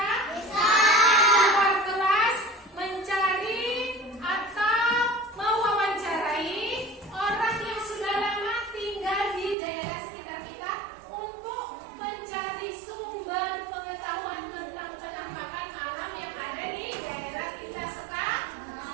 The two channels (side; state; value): left; drops out; at 9.6 s